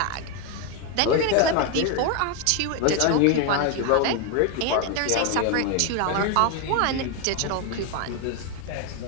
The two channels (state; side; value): different; both; correlation 0.01